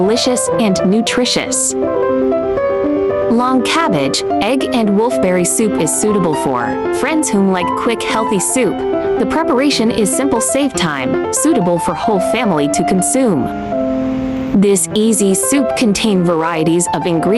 and nutritious. Long cabbage, egg, and wolfberry soup is suitable for friends who like quick, healthy soup. The preparation is simple, save time, suitable for whole family to consume. This easy soup contains varieties of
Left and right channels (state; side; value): identical; both; correlation 1.00